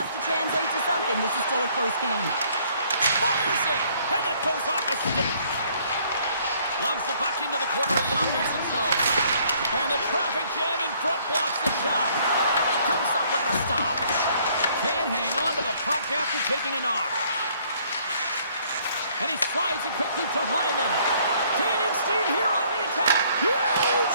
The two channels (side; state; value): both; inverted; correlation -0.62